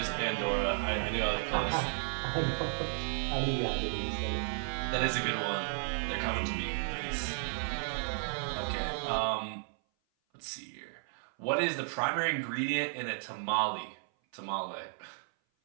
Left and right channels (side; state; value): left; silent; 55 dB below the other